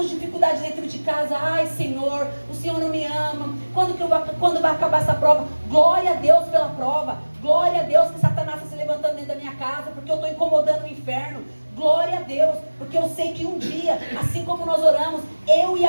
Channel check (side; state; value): both; inverted; correlation -1.00